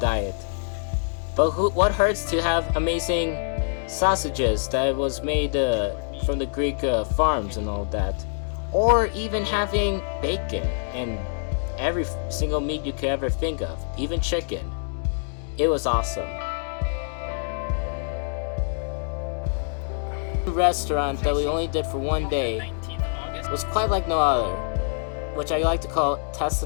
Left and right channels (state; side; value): silent; right; digital silence